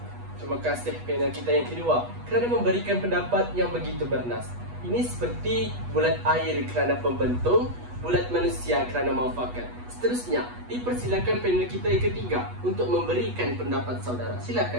Terima kasih panel kita yang kedua kerana memberikan pendapat yang begitu bernas. Ini seperti bulat air kerana pembentung, bulat manusia kerana muafakat. Seterusnya, dipersilakan panel kita yang ketiga untuk memberikan pendapat saudara.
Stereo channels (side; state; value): left; late; 8.2 ms